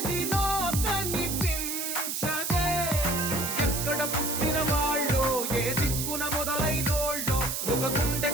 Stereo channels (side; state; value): right; noise; hiss, 2 dB below the sound